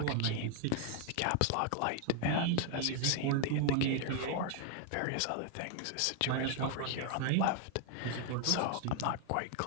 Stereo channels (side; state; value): both; different; correlation 0.00